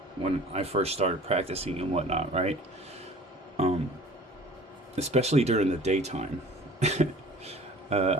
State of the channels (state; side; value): normal; both; correlation 0.46